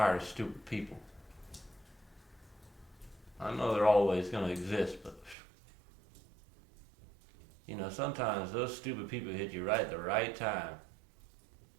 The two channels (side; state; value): left; drops out; at 5.4 s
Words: of stupid people. I know they're always going to exist, but sometimes those stupid people hit you right at the right time.